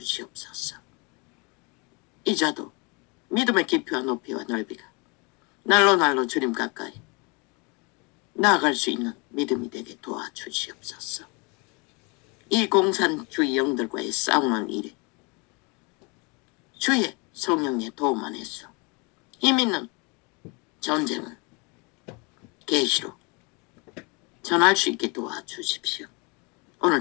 이자도 믿음의 깊이와 높이와 넓이가 날로 주님 가까이 나아갈 수 있는 믿음이 되게 도와주시옵소서. 이 공산주의 영들과의 싸움은 일에 주의 성령의 도움 안에서 힘 있는 전쟁을 계시로 전할 수 있게 도와주십시오.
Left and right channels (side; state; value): right; quieter; 30.3 dB